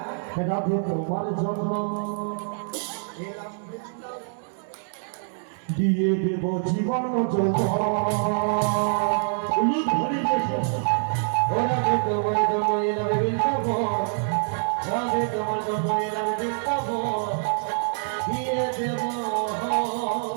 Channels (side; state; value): left; silent; digital silence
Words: রাধে তোমার জন্য দিয়ে দেব জীবন রাধে তোমার জন্য এলাম বৃন্দাবন, রাধে তোমার জন্য এলাম বৃন্দাবন, দিয়ে দেব